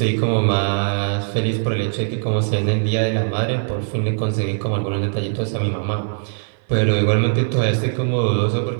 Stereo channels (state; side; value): silent; left; 57 dB below the other